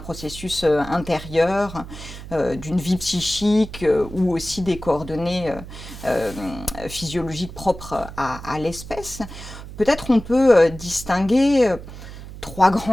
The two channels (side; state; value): right; noise; hum, 13 dB below the sound